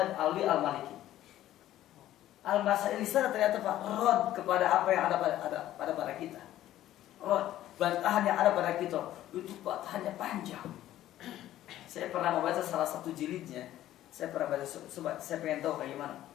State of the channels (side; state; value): right; quieter; 13.4 dB